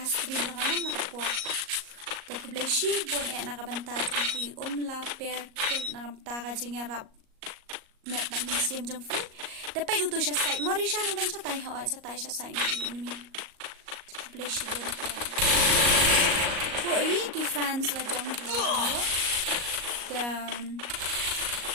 jonga nama kapo te ku bleshi bon e nakabanta ki la pair kel nakabanta ka jingarap met ba museum jong fi dapat utu siya site morisha nang dan sa tai ho sa tai siya site ni Please you don't care. So, ki fans la jong ko. Dan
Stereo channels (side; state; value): left; late; 38 ms